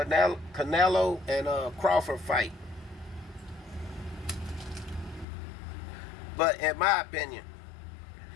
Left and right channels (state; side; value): drops out; right; at 5.2 s